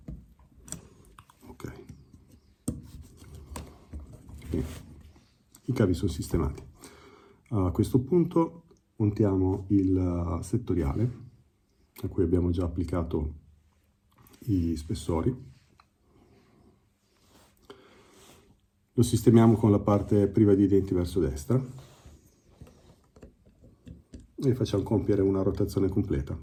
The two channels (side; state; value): both; identical; correlation 1.00